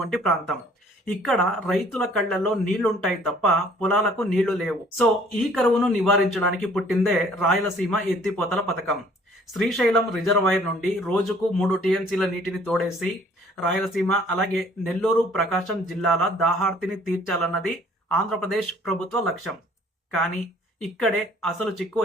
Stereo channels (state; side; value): normal; both; correlation 0.57